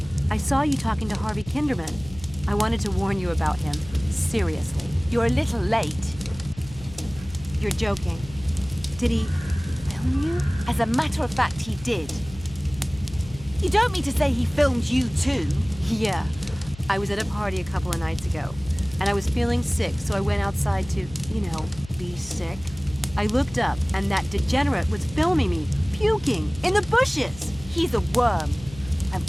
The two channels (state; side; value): noise; left; hum, 17 dB below the sound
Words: I saw you talking to Harvey Kinderman. I wanted to warn you about him. Seriously. You're a little late. You're joking. Did he film you? As a matter of fact, he did. You don't mean to say he filmed you too? Yeah. I was at a party a couple of nights ago, and I was feeling sick, so I went outside to, be sick. I looked up, and that degenerate was filming me, puking, in the bushes! He's a worm. I'm